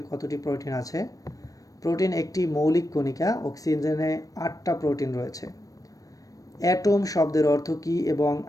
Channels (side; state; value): right; late; 0.17 ms